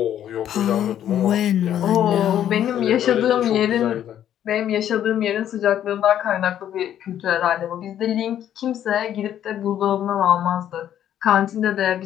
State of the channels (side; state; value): right; quieter; 10.7 dB